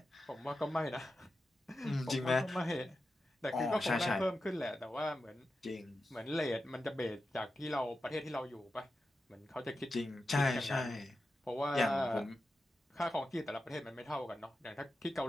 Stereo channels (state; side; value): normal; both; correlation 0.91